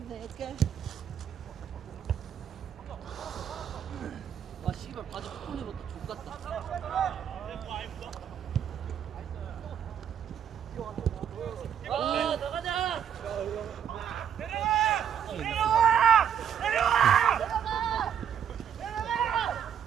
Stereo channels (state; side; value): quieter; left; 8.9 dB